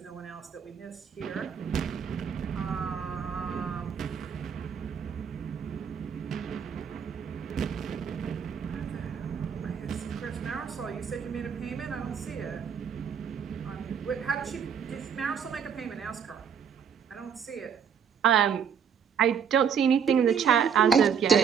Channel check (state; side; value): quieter; left; 7.3 dB